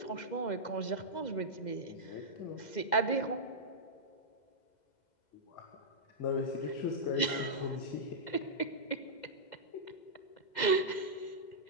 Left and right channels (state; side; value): late; right; 2.0 ms